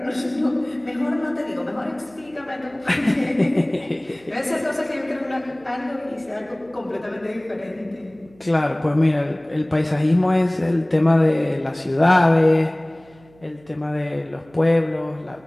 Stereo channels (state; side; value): noise; right; hum, 28 dB below the sound